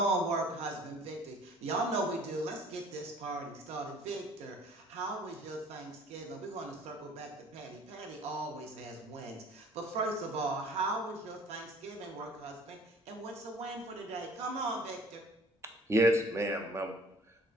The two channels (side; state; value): both; normal; correlation 0.51